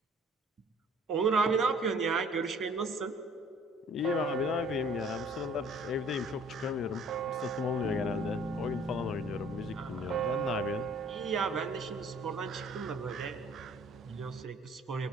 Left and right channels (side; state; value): both; normal; correlation 0.55